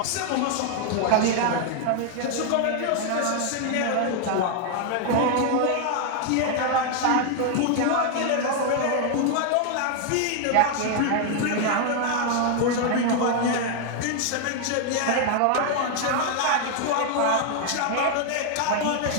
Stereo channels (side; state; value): both; different; correlation 0.00